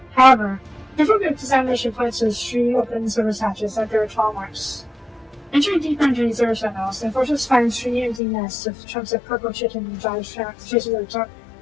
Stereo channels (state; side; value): drops out; right; at 8.2 s